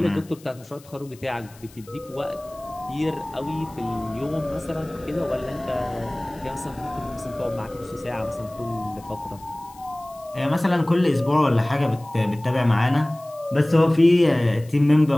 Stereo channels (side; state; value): left; noise; hiss, 25 dB below the sound